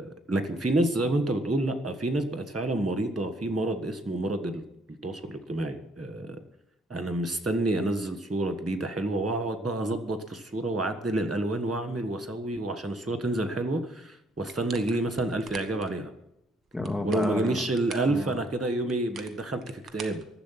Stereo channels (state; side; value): normal; both; correlation 0.66